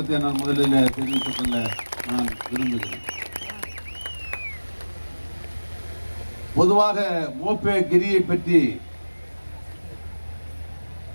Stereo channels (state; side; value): inverted; both; correlation -1.00